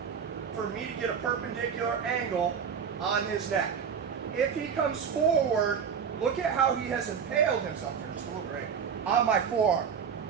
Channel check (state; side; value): quieter; left; 7.0 dB